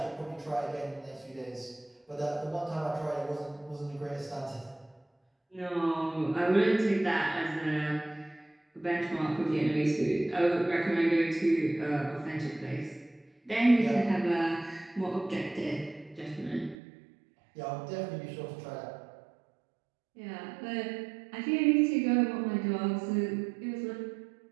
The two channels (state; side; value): drops out; left; at 16.8 s